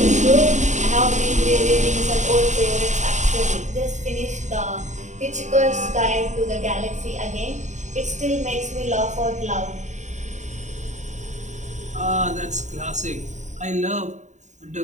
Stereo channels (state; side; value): late; left; 0.34 ms